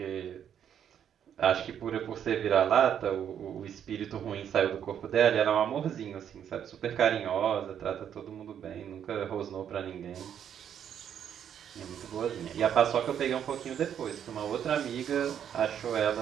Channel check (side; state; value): left; quieter; 9.1 dB